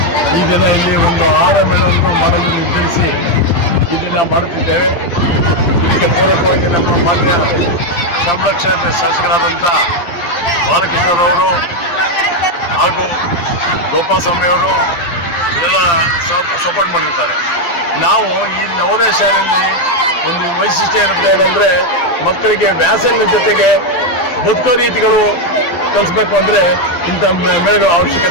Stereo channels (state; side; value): late; right; 12 ms